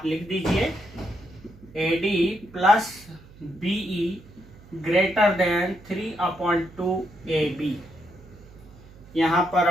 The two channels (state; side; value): noise; right; hum, 22 dB below the sound